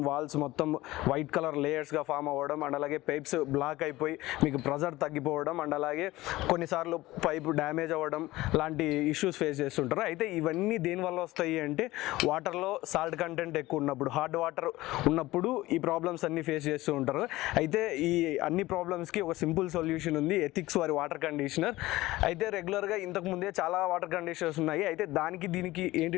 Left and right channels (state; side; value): quieter; right; 18.1 dB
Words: వాల్స్ మొత్తం వైట్ కలర్ లేయర్స్గా ఫామ్ అవ్వడం అండ్ అలాగే పైప్స్ బ్లాక్ అయిపోయి మీకు ప్రెజర్ తగ్గిపోవడం అండ్ అలాగే కొన్నిసార్లు పైప్ డ్యామేజ్ అవ్వడం లాంటి ఇష్యూస్ ఫేస్ చేస్తుంటారు. అయితే ఇవన్నీ దేనివల్ల వస్తాయి అంటే వాటర్లో సాల్ట్ కంటెంట్ ఎక్కువ ఉన్నప్పుడు, హార్డ్ వాటర్ ఉన్నప్పుడు ఈ ప్రాబ్లమ్స్ అన్ని ఫేస్ చేస్తూ ఉంటారు. అయితే ఈ అన్ని ప్రాబ్లమ్స్కి ఒక సింపుల్ సొల్యూషన్ ఉంది, ఎథిక్స్ వారి వాటర్ కండిషనర్. అయితే రెగ్యులర్గా ఇంతకుముందే చాలా వాటర్ కండిషనర్స్ ఉన్నాయి. అయితే దానికి దీనికి ఏంటి